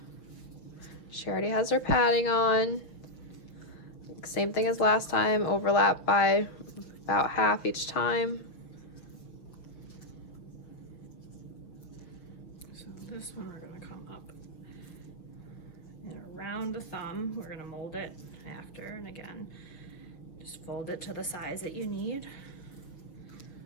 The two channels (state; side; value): late; right; 6.3 ms